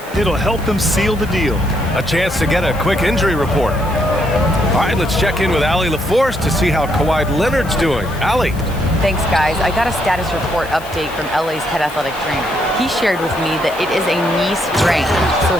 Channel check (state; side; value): noise; left; hiss, 19 dB below the sound